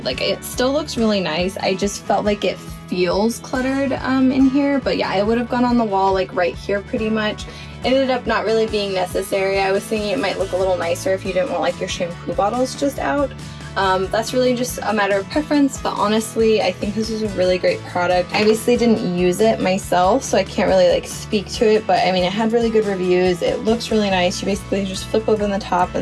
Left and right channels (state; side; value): identical; both; correlation 1.00